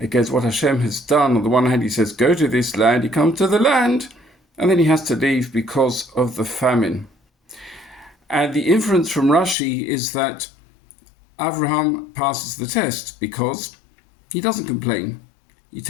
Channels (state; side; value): drops out; right; at 9.6 s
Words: what Hashem has done. On the one hand, he says, go to this land. He comes to the land, and then he has to leave because of the famine. And the inference from Rashi is that Avraham passes the test because he doesn't complain. He